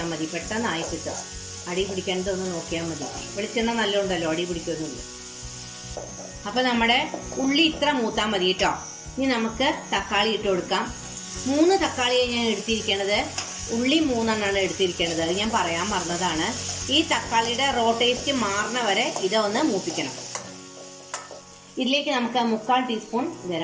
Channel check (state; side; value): identical; both; correlation 1.00